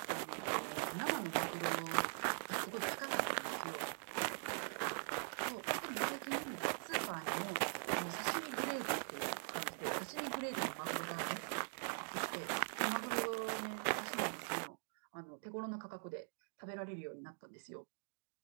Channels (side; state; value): left; silent; digital silence